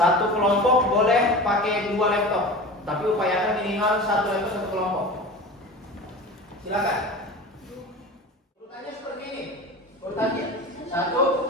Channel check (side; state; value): both; normal; correlation 0.33